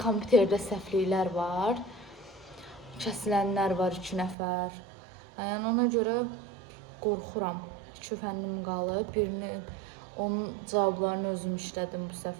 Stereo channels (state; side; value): drops out; left; at 4.4 s